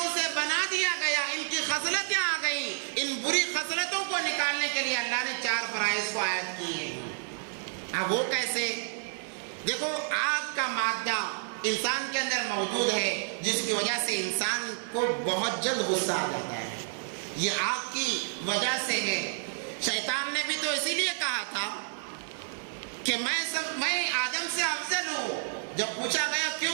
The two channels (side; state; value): left; silent; 58 dB below the other